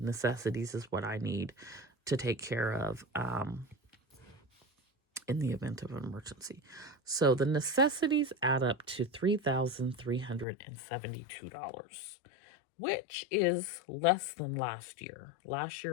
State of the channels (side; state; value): right; drops out; at 10.5 s